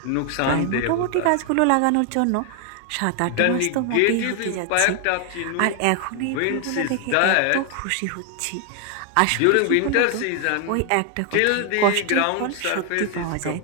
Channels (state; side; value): different; both; correlation 0.00